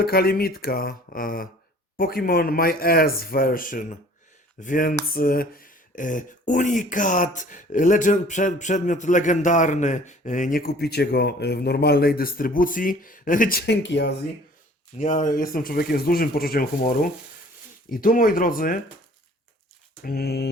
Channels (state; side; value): normal; both; correlation 0.51